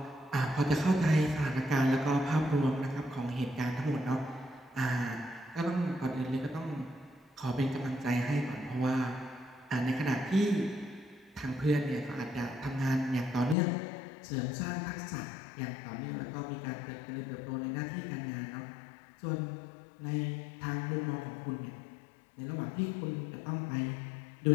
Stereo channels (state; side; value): drops out; right; at 13.6 s